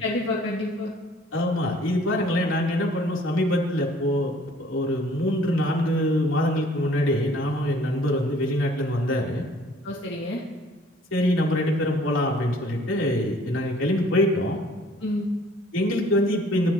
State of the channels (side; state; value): both; normal; correlation 0.56